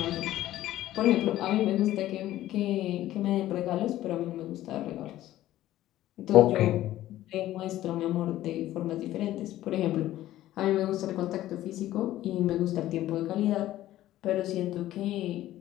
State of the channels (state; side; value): quieter; right; 14.3 dB